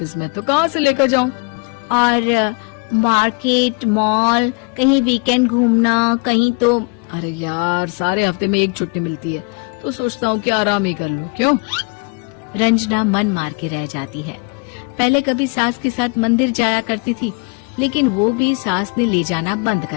में, तो कहाँ से लेकर जाऊं? और मार्केट, मॉल, कहीं वीकेंड घूमना, कहीं तो। अरे यार सारे हफ्ते में एक छुट्टी मिलती है, तो सोचता हूँ कि आराम ही कर लूं। क्यों? रंजना मन मार के रह जाती है। पहले कभी सास के साथ मंदिर जाया करती थी, लेकिन वो भी सास ने ले जाना बंद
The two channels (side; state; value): right; quieter; 33.8 dB